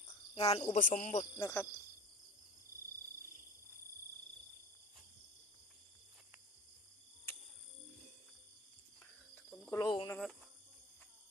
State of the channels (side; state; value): both; normal; correlation 0.36